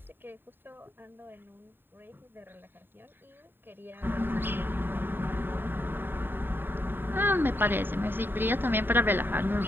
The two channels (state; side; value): late; left; 0.097 ms